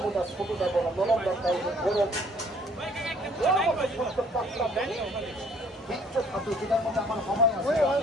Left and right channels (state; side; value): normal; both; correlation 0.58